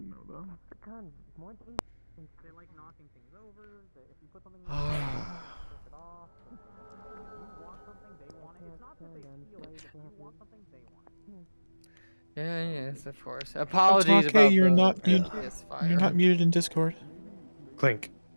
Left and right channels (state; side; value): inverted; both; correlation -1.00